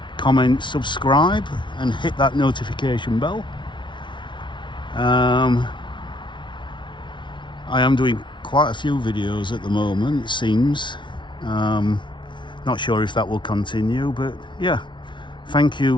comment, subscribe and hit that notification bell. I am doing quite a few videos at the moment, it seems. Not sure if that will continue, but yeah, thank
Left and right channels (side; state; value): right; late; 0.24 ms